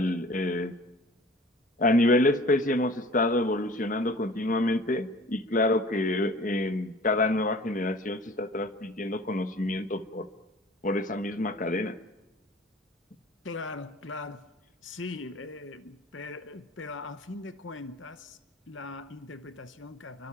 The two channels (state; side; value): normal; both; correlation 0.46